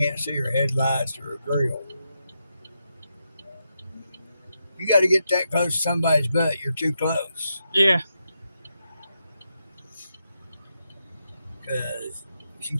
see her headlights or her grill. You got to get that close to somebody's butt. You're too close. Yeah. Because she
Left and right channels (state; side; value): inverted; both; correlation -0.84